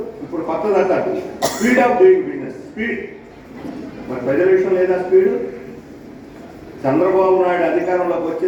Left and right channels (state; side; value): identical; both; correlation 1.00